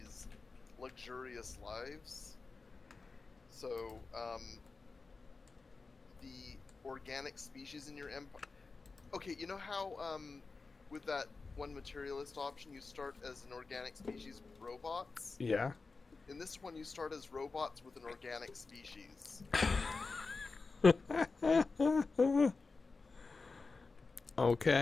luxurious lives. So, the organic species in your empire... Okay, you know how, with that one materialist option, you start as an organic species with robots? Yeah. In this one, you start as robots with an organic species.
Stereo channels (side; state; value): right; quieter; 4.1 dB